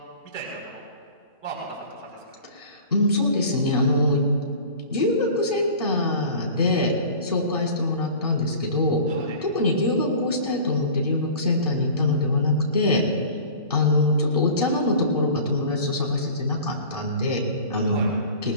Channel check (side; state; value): both; inverted; correlation -0.41